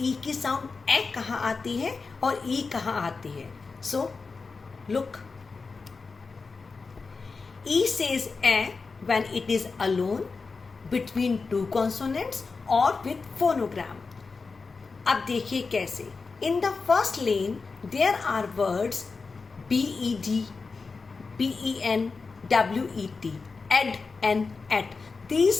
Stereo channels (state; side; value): quieter; right; 4.4 dB